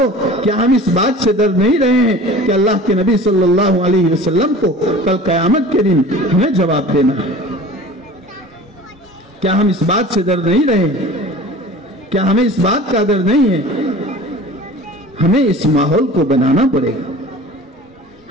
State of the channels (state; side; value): normal; both; correlation 0.41